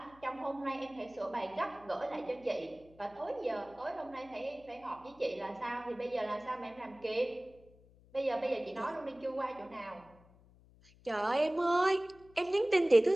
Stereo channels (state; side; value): noise; left; hum, 26 dB below the sound